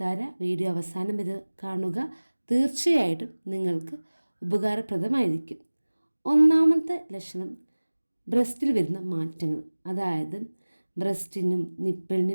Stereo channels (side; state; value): both; inverted; correlation -1.00